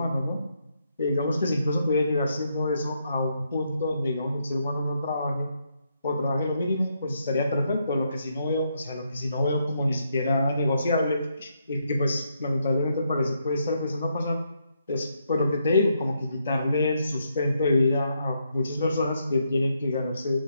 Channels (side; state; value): both; inverted; correlation -0.78